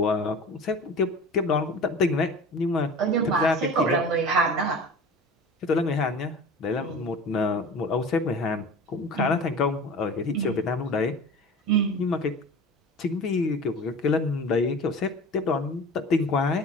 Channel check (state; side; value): normal; both; correlation 0.38